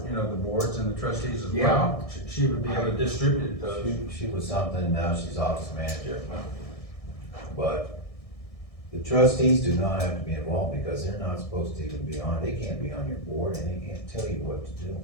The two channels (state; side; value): late; right; 1.6 ms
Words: you know, the boards and the trustees as well, she would be able to distribute those. She was something, now she's office manager. But the trustees do not have to be involved because they're not supposed to even be on, they can't be on your board and they can't tell you what to do.